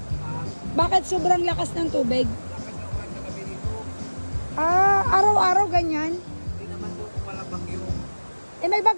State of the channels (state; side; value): inverted; both; correlation -1.00